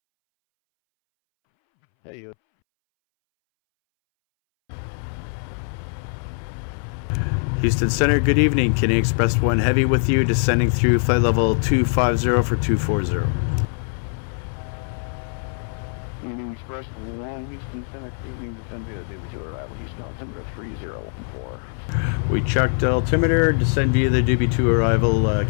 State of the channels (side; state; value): right; silent; 64 dB below the other